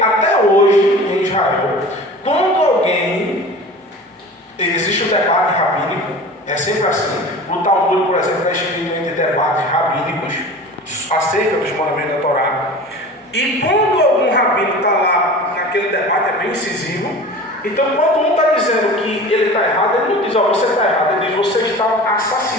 hoje, em Israel, quando alguém, existe um debate rabínico, é sempre assim. O Talmud, por exemplo, é escrito entre debates rabínicos acerca dos mandamentos da Torá. E quando algum rabino está lá naquele debate, é bem incisivo. Então, quando um está dizendo que ele está errado, ele não diz, ó, você está errado, ele diz, você está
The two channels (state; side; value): normal; both; correlation 0.37